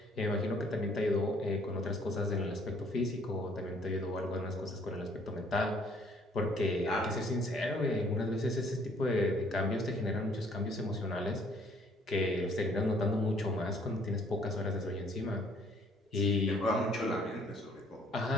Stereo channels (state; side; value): normal; both; correlation 0.62